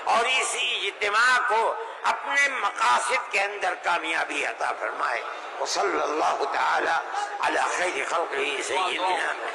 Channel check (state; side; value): identical; both; correlation 1.00